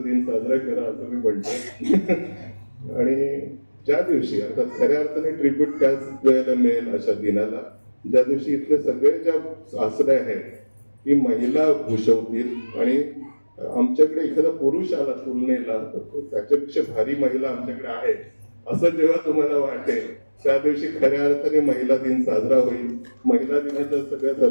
दिन साजरा करा असं मी म्हणतो. आणि ज्या दिवशी आता खऱ्या अर्थाने ट्रिब्यूट त्याच वेळेला मिळेल अशा दिनाला, ज्या दिवशी इथले सगळे ज्या सासरे आहेत ती महिला भूषवतील आणि आमच्याकडे एखादा पुरुष आला तुलनेला तर त्याच्यापेक्षा भारी महिला आमच्याकडे आहे असं जेव्हा तुम्हाला वाटेल त्या दिवशी खऱ्या अर्थाने महिला दिन साजरा होईल. महिला दिनाच्या सगळ्या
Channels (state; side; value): inverted; both; correlation -1.00